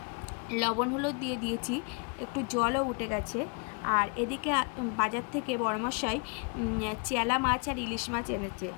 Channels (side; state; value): right; quieter; 32.8 dB